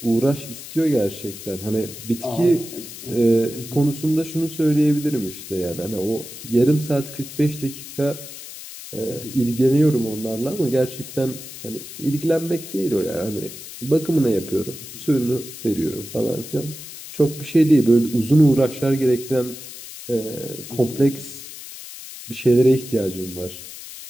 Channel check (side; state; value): left; noise; hiss, 13 dB below the sound